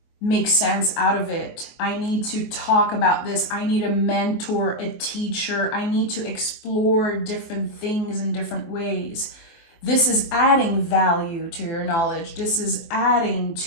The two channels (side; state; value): right; late; 24 ms